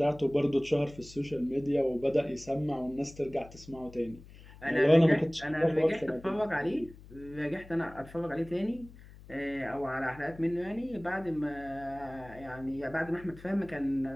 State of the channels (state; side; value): noise; left; hum, 19 dB below the sound